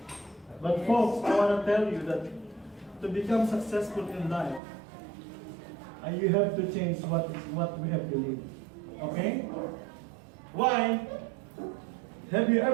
But folks, I want to tell you that to become successful in life, you have to change what we have believed. Okay? Why? Have you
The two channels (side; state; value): left; drops out; at 4.6 s